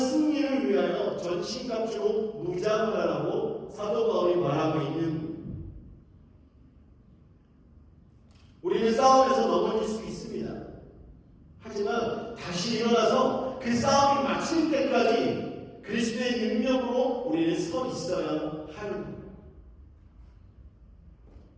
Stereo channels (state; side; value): identical; both; correlation 1.00